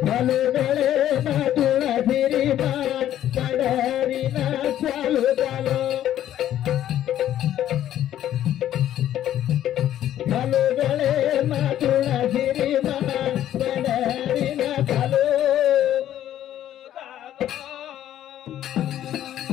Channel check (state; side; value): quieter; right; 11.8 dB